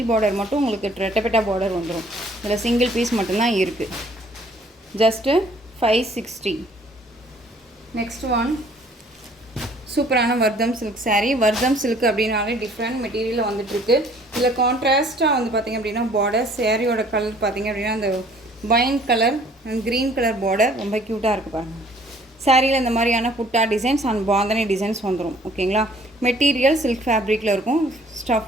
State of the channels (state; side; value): normal; both; correlation 0.57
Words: பார்டர் மட்டும் உங்களுக்கு ரெட்டப்பெட்டா பார்டர் வந்துடும். இதில் சிங்கிள் பீஸ் மட்டும்தான் இருக்குது. ஜஸ்ட்டு 560. நெக்ஸ்ட் ஒன் சூப்பரான வர்தம் சில்க் சாரீ. வர்தம் சில்க் அப்படின்னாலே டிஃப்ரெண்ட் மெட்டீரியலில் வந்துட்டுருக்கு. இதில் கான்ட்ராஸ்ட்டாக வந்து பார்த்திங்க அப்படின்னா பார்டர் சாரியோட கலர் பார்த்திங்க அப்படின்னா அந்த wine colour and green colour border ரொம்ப க்யூட்டாக இருக்குது பாருங்கள். சாரியில் இந்த மாதிரியான புட்டா டிசைன்ஸ் அண்ட் பாந்தனி டிசைன்ஸ் வந்துடும். ஓகேங்களா? மெட்டீரியல் சில்க் ஃபேப்ரிக்கில் இருக்கும்.